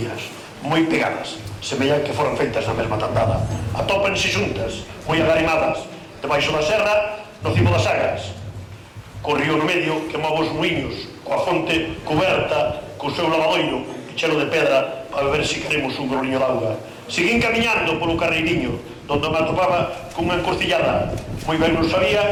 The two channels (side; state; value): both; identical; correlation 1.00